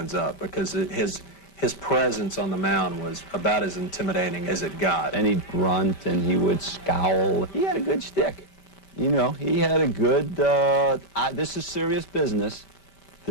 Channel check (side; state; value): right; late; 5.1 ms